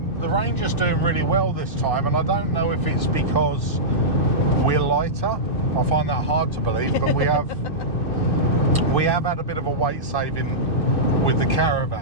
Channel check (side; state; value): right; late; 2.6 ms